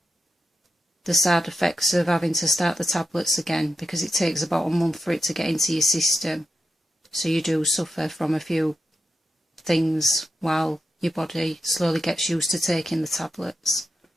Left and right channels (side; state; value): both; normal; correlation 0.88